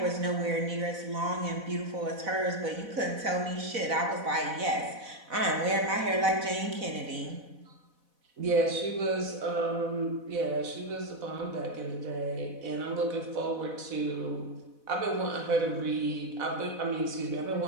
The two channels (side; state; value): left; late; 4.1 ms